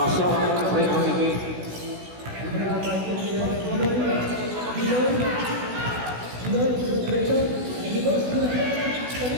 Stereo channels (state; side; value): late; left; 16 ms